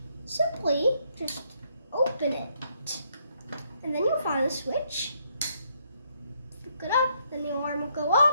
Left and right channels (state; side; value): inverted; both; correlation -0.73